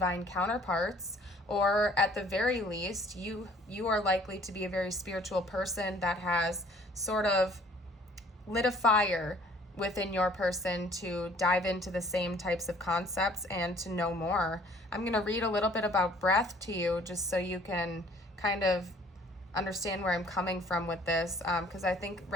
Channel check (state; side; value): normal; both; correlation 0.56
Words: counterparts, or at the very least, you are likely to be a very spiritual person that has sort of lit a fire within your person to dive into the same types of concepts and to know more. I'm going to read a little bit about breath to you just so you can kind of understand where I'm coming from with this, because I think